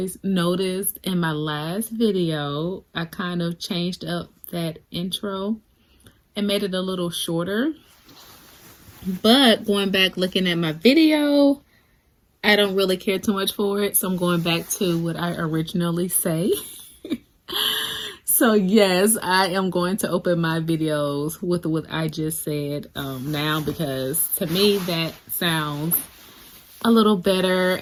noticed in my last video, I kind of changed up that intro and made it a little shorter. But going back looking at my video, I don't really care too much for it. So I'm going back to what I originally say. So yes, I am going to open my videos with what I just said now, because to me that sounds a little better,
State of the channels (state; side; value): identical; both; correlation 1.00